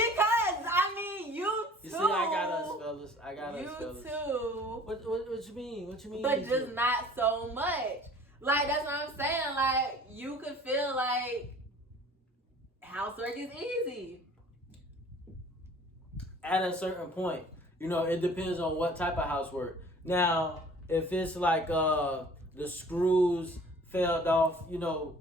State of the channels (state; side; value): normal; both; correlation 0.49